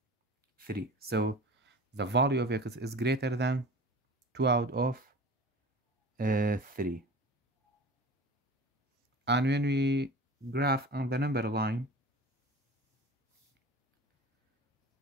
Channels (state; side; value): normal; both; correlation 0.38